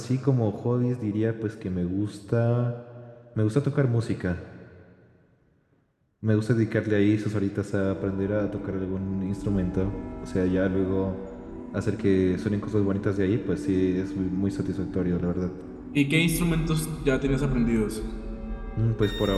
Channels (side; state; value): both; identical; correlation 1.00